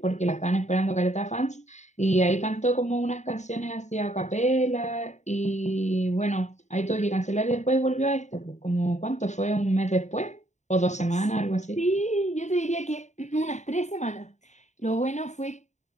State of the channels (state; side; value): late; right; 0.34 ms